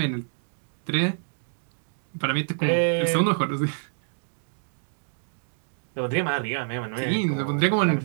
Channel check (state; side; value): silent; left; 59 dB below the other